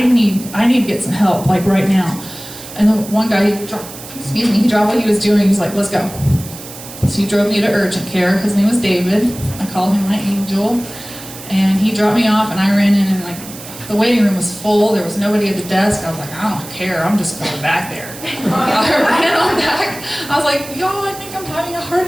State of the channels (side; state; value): right; noise; hiss, 14 dB below the sound